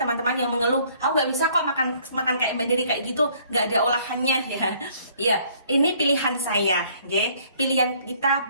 yang mengeluh, aku nggak bisa kok makan kayak Mbak Dery kayak gitu, nggak ada olahannya ya. Ya, ini pilihan saya, oke. Pilihan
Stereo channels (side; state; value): both; inverted; correlation -0.60